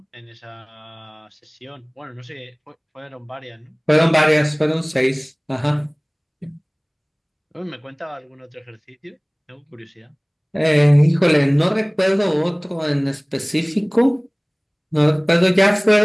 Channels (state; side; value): identical; both; correlation 1.00